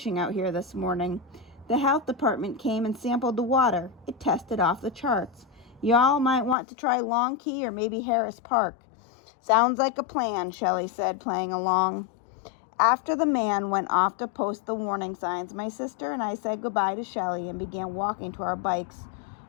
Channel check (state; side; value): drops out; right; at 6.6 s